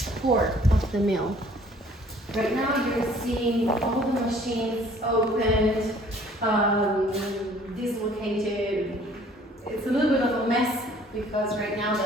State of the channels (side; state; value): both; normal; correlation 0.56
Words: core of the mill. Right now you're seeing all the machines opened, dislocated. It's a little bit of a mess because right now